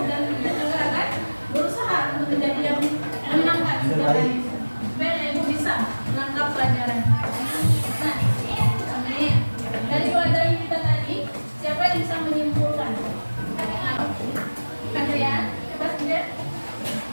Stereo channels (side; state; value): both; inverted; correlation -1.00